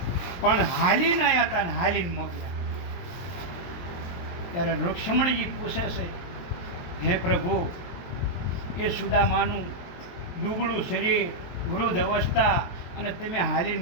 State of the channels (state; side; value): late; right; 23 ms